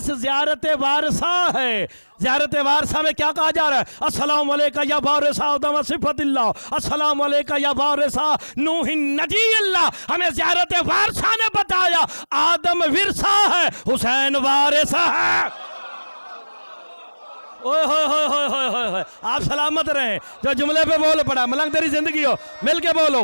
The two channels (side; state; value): both; inverted; correlation -1.00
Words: زیارت وارثہ ہے۔ زیارت وارثہ میں کیا کہا جا رہا ہے؟ السلام علیکہ یا وارث آدم صفت اللہ، السلام علیکہ یا وارث نوح نجی اللہ۔ ہمیں زیارت وارثہ نے بتایا آدم ورثہ ہے، حسین وارث ہے۔ اوہ ہوئے ہوئے ہوئے ہوئے ہوئے ہوئے، آپ سلامت رہیں۔ جو جملے پہ بول پڑا، ملنگ تیری زندگی ہو، مل کے بولو